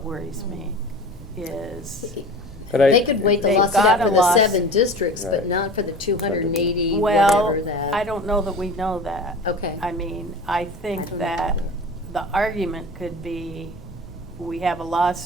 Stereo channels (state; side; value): normal; both; correlation 0.36